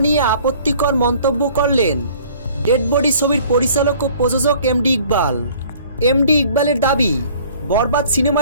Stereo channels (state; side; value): inverted; both; correlation -0.53